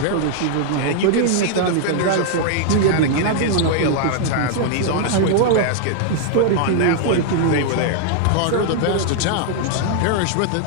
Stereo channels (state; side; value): different; both; correlation 0.00